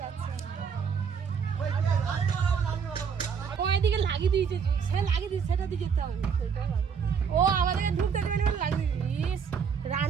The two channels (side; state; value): left; quieter; 6.6 dB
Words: আচ্ছা। ও এদিকে লাগিয়ে দিয়েছে, সে লাগিয়ে দিয়েছে, সেটা দিয়ে যেতে হবে। ও আমাদেরকে ঢুকতে দেবে না বলে লাগিয়ে দিয়েছে।